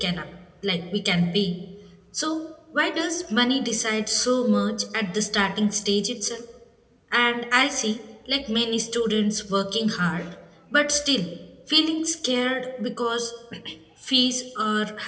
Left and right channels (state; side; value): identical; both; correlation 1.00